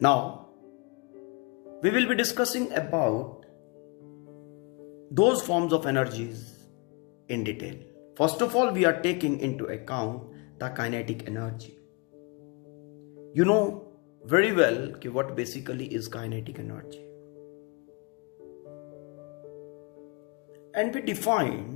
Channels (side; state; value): right; quieter; 29.4 dB